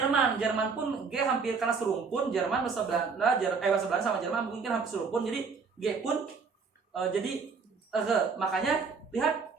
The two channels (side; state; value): left; quieter; 5.1 dB